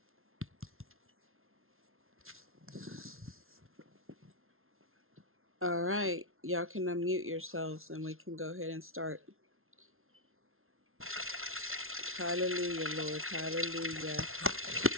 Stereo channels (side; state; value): left; late; 0.61 ms